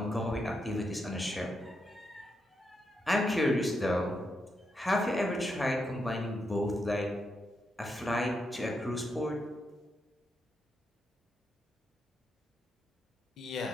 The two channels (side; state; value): both; normal; correlation 0.83